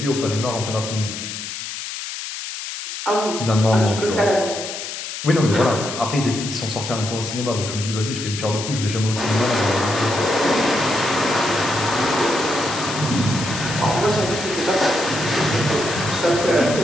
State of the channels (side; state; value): left; noise; hiss, 7 dB below the sound